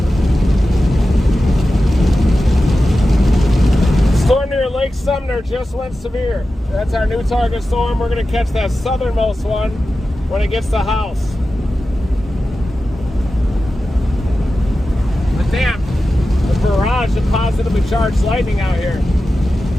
Storm near Lake Sumner just went severe. That's our new target storm. We're going to catch that southernmost one when it gets to House. But damn, a barrage of positively charged lightning out here.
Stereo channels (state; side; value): normal; both; correlation 0.93